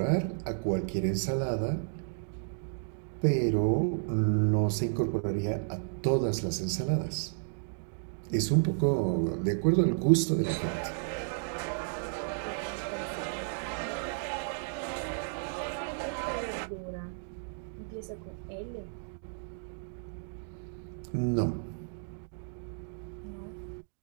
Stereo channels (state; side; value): silent; left; digital silence